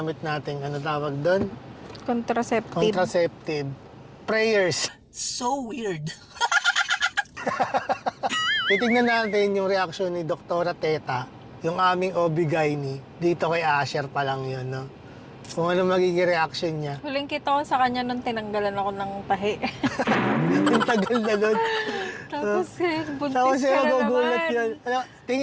nating, ano tawag doon? Contraceptive. Prayers. So weird. Titignan natin yung reaction ni Dr. Teta, yung aming OB-GYN dito kay Asher pa lang yun, no? Kung ano magiging reaction niya. Huling kita ko sa kanya nung tinanggalan ako ng tahi. Ang tagal na nun. Tapos buntis Tapos ka siya na magugulat naman. yun. Ano,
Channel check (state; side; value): identical; both; correlation 1.00